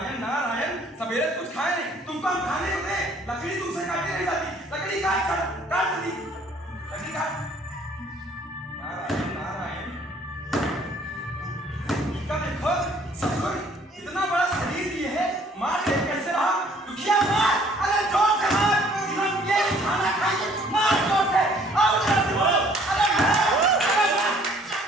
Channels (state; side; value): normal; both; correlation 0.59